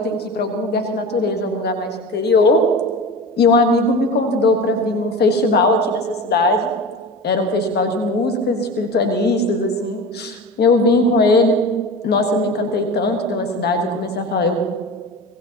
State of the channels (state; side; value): normal; both; correlation 0.31